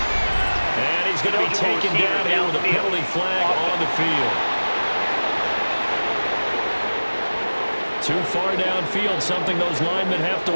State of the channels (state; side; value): inverted; both; correlation -1.00